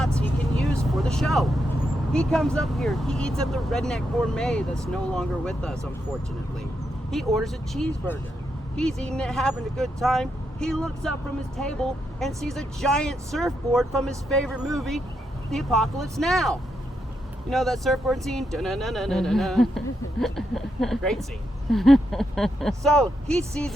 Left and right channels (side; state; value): both; normal; correlation 0.82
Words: he can use for the show. He comes up here, he eats at the Redneck Gourmet that's no longer with us, unfortunately. He orders a cheeseburger. He's eating it, having a good time. He looks up from his table and sees a giant surfboard from his favorite movie, The Apocalypse Now. You know that surfboard scene? Da-na-na-na-na-na-na. Great scene. So he sees